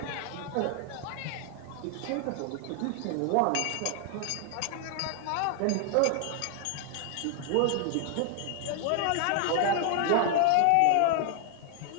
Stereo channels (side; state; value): both; different; correlation 0.00